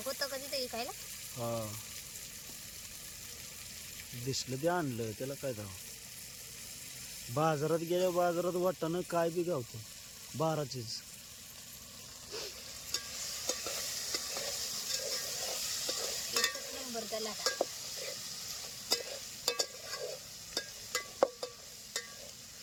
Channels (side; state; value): both; identical; correlation 1.00